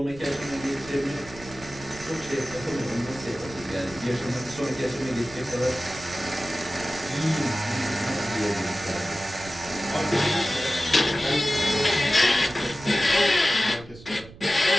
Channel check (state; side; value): noise; right; rumble, 18 dB below the sound